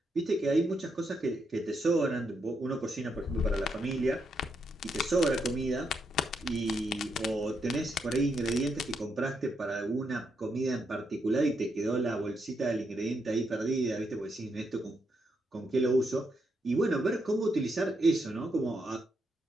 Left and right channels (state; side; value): normal; both; correlation 0.80